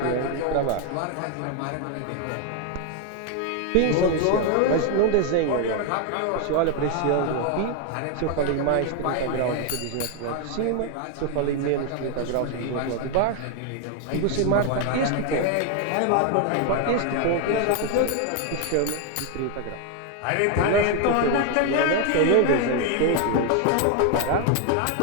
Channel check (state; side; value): different; both; correlation 0.00